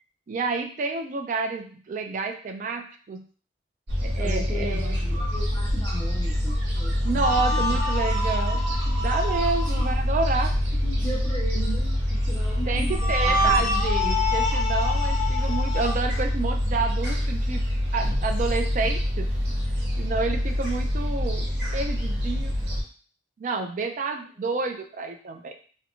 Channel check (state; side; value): normal; both; correlation 0.62